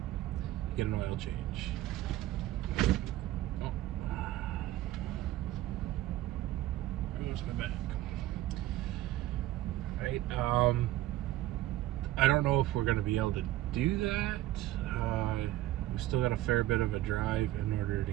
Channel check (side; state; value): left; quieter; 15.1 dB